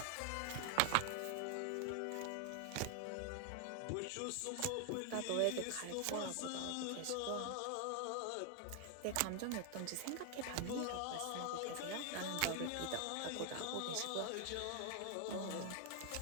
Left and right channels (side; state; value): both; different; correlation 0.00